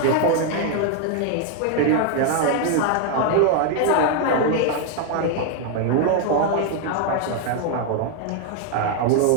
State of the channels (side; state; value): both; different; correlation 0.00